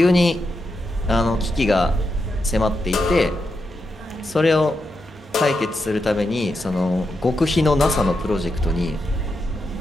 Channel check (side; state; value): both; normal; correlation 0.85